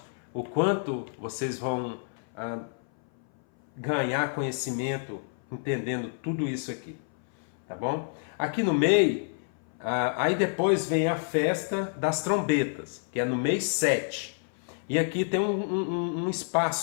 o quanto vocês vão ganhar conhecimento entendendo tudo isso aqui, tá bom? Aqui no meio, aí depois vem a festa das trombetas, que é no mês 7. E aqui tem um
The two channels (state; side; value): silent; right; 57 dB below the other